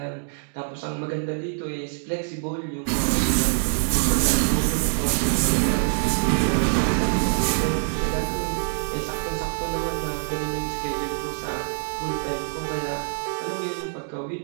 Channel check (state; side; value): silent; left; digital silence